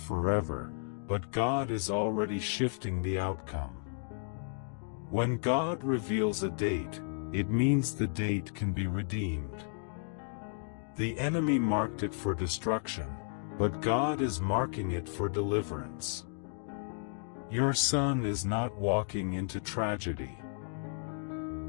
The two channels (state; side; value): silent; right; digital silence